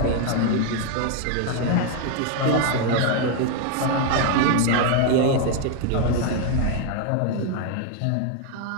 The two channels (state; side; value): different; both; correlation 0.01